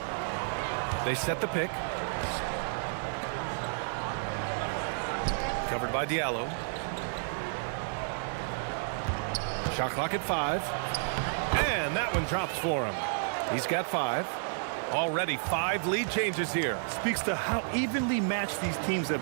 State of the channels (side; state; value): left; silent; 57 dB below the other